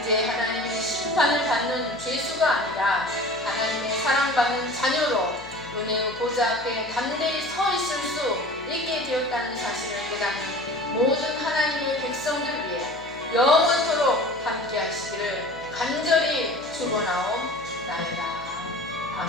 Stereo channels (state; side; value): noise; left; hum, 21 dB below the sound